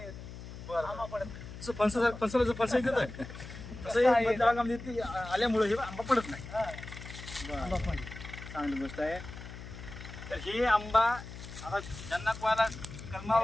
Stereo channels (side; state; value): left; noise; hum, 12 dB below the sound